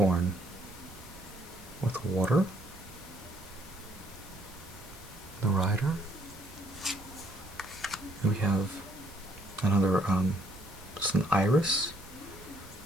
with water, the rider. And we have another, it's an iris,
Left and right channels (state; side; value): noise; right; rumble, 20 dB below the sound